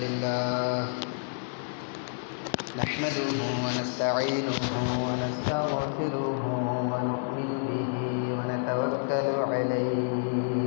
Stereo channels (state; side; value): silent; right; digital silence